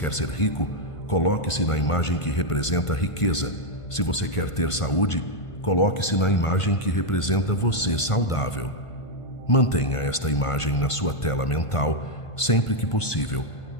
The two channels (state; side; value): late; right; 1.5 ms